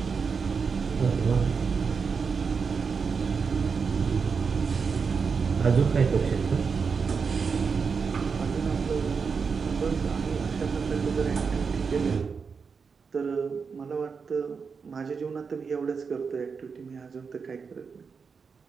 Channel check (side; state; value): left; quieter; 5.5 dB